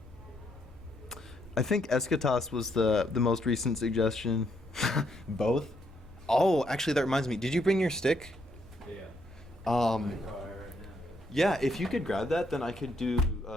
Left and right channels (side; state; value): both; normal; correlation 0.74